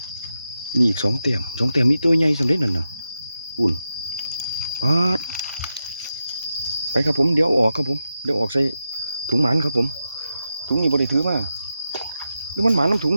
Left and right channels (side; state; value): both; inverted; correlation -0.89